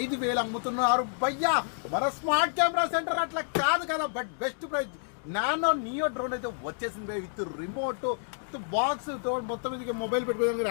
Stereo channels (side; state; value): right; silent; digital silence